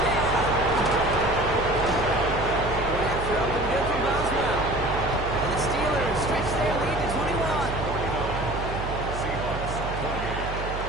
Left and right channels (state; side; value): noise; right; hum, 6 dB below the sound